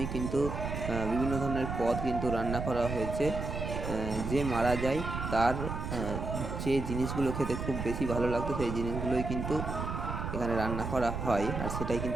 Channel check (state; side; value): noise; right; rumble, 4 dB below the sound